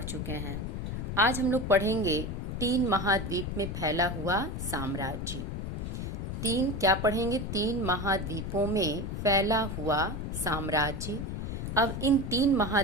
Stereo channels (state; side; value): noise; left; rumble, 4 dB below the sound